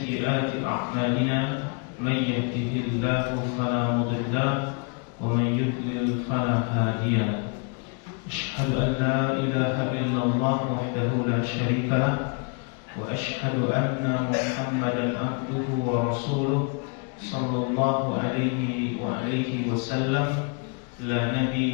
a'malina. Man yahdihillahu fala mudilla wa man yudlil fala hadiya. أشهد أن لا إله إلا الله وحده لا شريك له وأشهد أن محمدا عبده ورسوله صلى الله عليه وسلم لا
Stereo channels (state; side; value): quieter; right; 36.6 dB